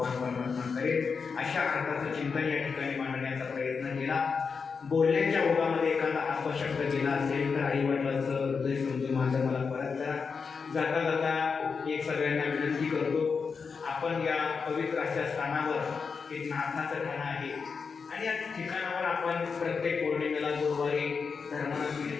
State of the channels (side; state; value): right; quieter; 5.4 dB